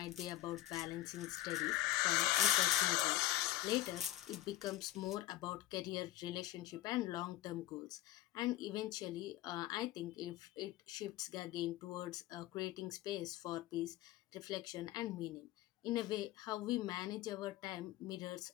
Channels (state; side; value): quieter; right; 15.1 dB